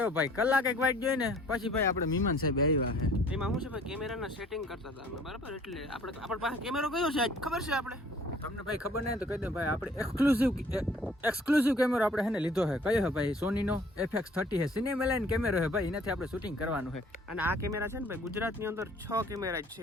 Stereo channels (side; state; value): both; normal; correlation 0.55